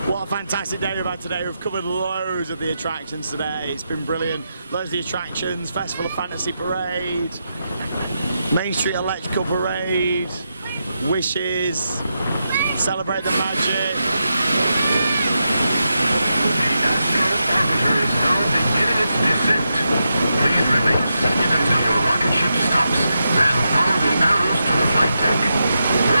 What a fantastic day we've had today. We've covered loads of the attractions today. It's been brilliant. Loads of the attractions, Festival of Fantasy Parade, Main Street Electrical Parade, Wishes, Celebrate the Magic. Please remain seated until your rocket ship stops, then follow the arrows to the flight deck.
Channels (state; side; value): inverted; both; correlation -0.86